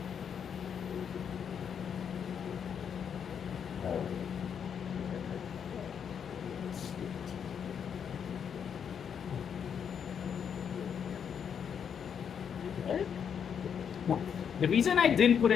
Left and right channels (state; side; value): quieter; right; 7.6 dB